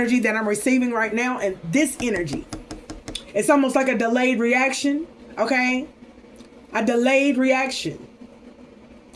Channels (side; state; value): both; identical; correlation 1.00